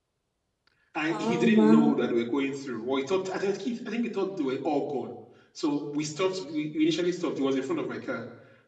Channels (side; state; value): both; identical; correlation 1.00